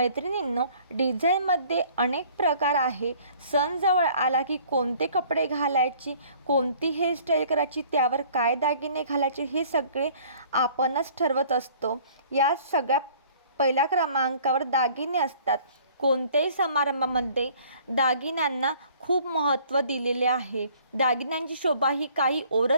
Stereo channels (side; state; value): both; inverted; correlation -0.54